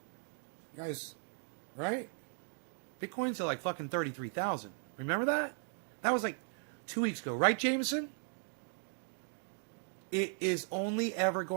You guys, right? Bitcoin's at like fucking 33,000. Remember that? That was like 2 weeks ago, right, Jameson? It is only ever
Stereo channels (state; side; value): silent; left; 53 dB below the other